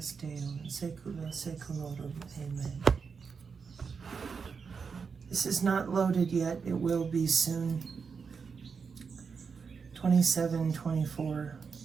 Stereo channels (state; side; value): quieter; left; 5.6 dB